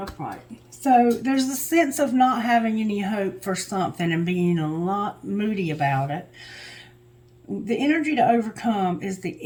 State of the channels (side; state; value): both; identical; correlation 1.00